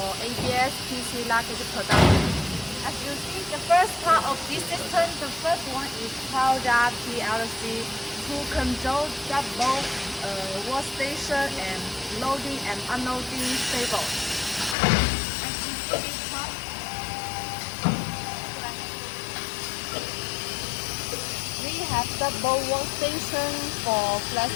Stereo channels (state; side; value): drops out; right; at 14.8 s